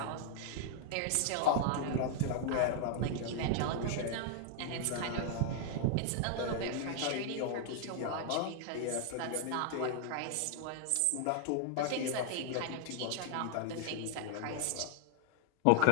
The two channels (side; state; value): both; different; correlation 0.00